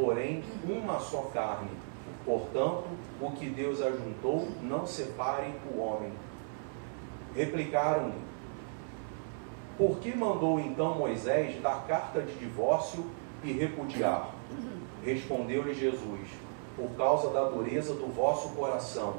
uma só carne. Portanto, o que Deus ajuntou, não separe o homem. Replicaram-lhe: por que mandou então Moisés dar carta de divórcio e repudiar? Respondeu-lhe Jesus: por causa da dureza do vosso coração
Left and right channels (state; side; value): silent; left; 55 dB below the other